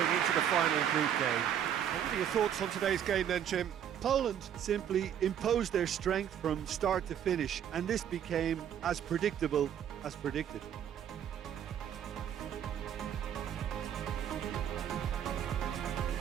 into the final group game. What are your thoughts on today's game then, Jim? Poland simply imposed their strength from start to finish, and this became as predictable as predicted.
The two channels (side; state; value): left; quieter; 9.4 dB